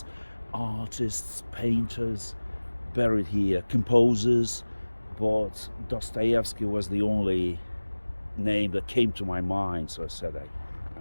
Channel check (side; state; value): both; inverted; correlation -1.00